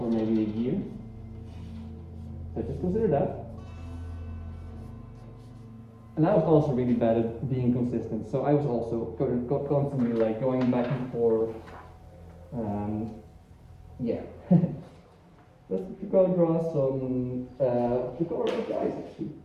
maybe a year. So just consider that. And I was also really bad at being consistent, so I was also constantly like going back and forth. Yeah. Let's go draw some the color of the eyes actually.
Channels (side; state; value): both; identical; correlation 1.00